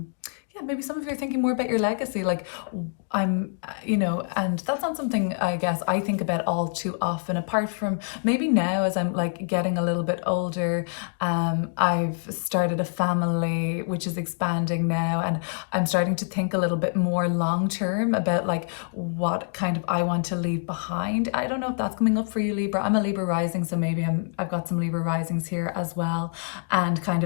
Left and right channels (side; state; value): right; silent; digital silence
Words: maybe some of you are thinking more about your legacy. Like you know, and that's not something I guess I think about all too often, apart from maybe now as I'm like getting a little bit older. I've started a family which is expanding now, and I'm starting to think a little bit more long term about like what kind of I want to leave behind. I don't know if that's coming up for you, Libra. I'm a Libra rising, so maybe I've got some Libra risings here as well, and kind